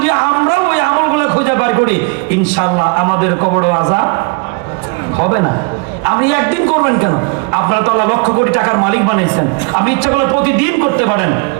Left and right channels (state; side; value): quieter; left; 32.9 dB